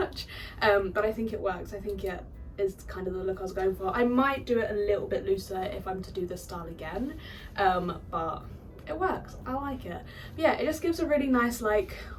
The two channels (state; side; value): identical; both; correlation 1.00